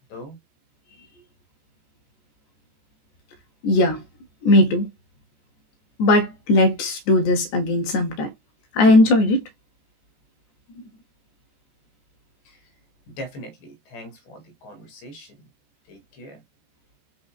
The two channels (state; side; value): late; right; 14 ms